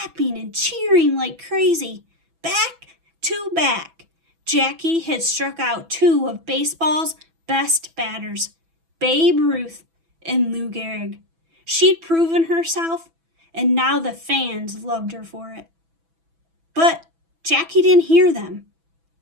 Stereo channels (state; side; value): late; left; 6.1 ms